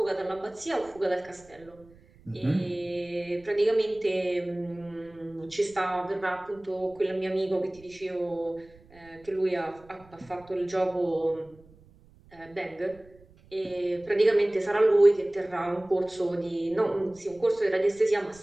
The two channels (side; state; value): right; noise; rumble, 26 dB below the sound